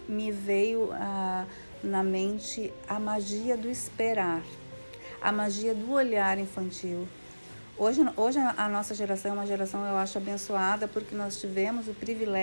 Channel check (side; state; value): both; inverted; correlation -1.00